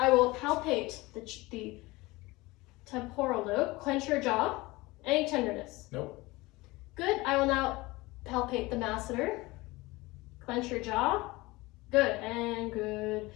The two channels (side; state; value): right; quieter; 21.5 dB